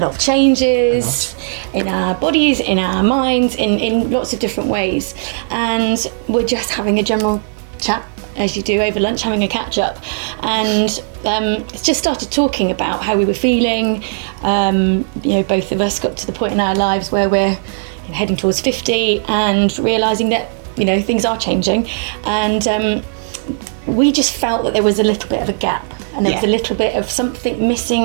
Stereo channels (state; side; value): silent; left; digital silence